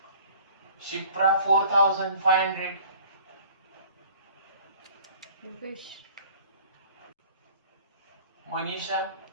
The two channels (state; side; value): inverted; both; correlation -0.50